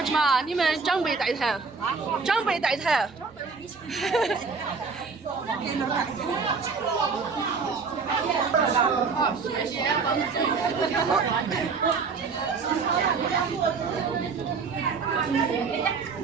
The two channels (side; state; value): left; quieter; 4.9 dB